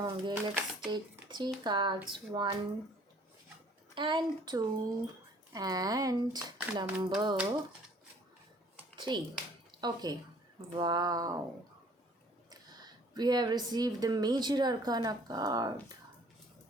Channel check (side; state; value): both; normal; correlation 0.56